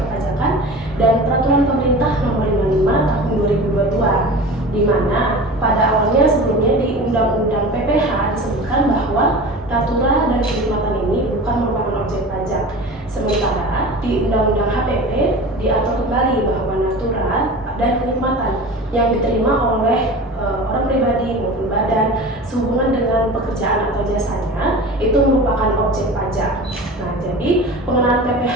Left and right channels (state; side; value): normal; both; correlation 0.34